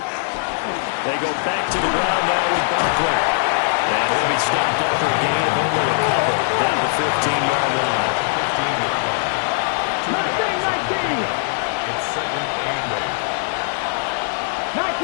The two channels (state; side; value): silent; right; digital silence